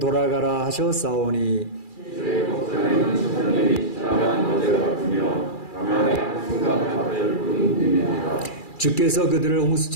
하셨사오니 주의 목전에는 천년이 지나간 어제 같으며 가면의 한순간 같을 뿐입니다. 주께서 그들을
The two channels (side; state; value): right; late; 2.4 ms